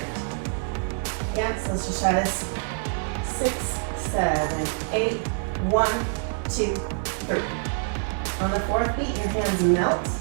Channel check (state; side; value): silent; left; 61 dB below the other